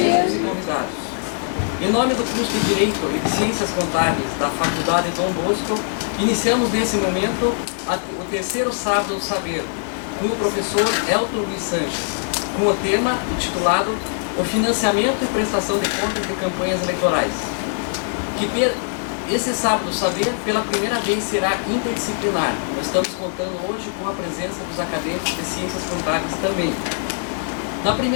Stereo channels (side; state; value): right; silent; 64 dB below the other